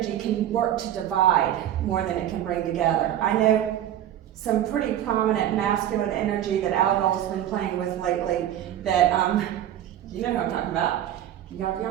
can work to divide more than it can bring together. I know some pretty prominent masculine energy that Algol's been playing with lately that, you know who I'm talking about. Y'all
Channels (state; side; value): quieter; left; 11.5 dB